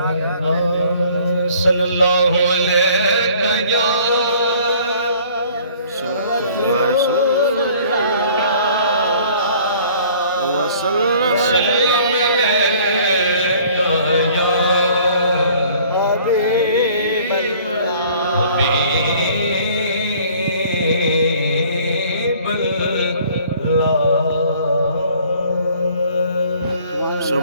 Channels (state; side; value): inverted; both; correlation -0.54